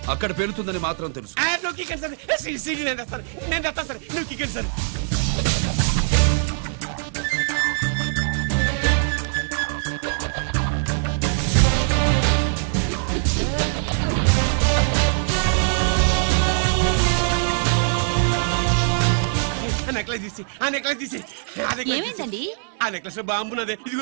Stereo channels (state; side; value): silent; left; digital silence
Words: అక్కడ పేలుతుందని మాత్రం తెలుసు. ఏమైందండి? ఆ నెక్లెస్ లో బాంబున్నదే.